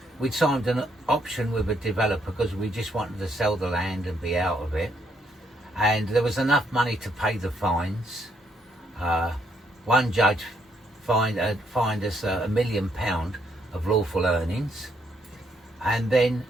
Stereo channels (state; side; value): normal; both; correlation 0.73